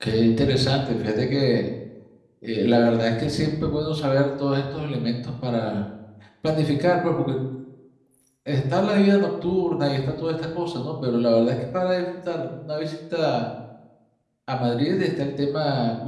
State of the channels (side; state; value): both; identical; correlation 1.00